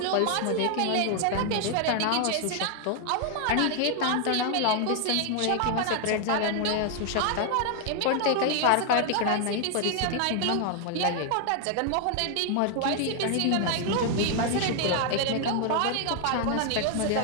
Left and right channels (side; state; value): both; different; correlation 0.00